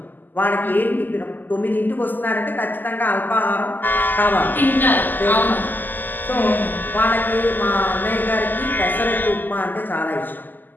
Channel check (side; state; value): right; late; 0.087 ms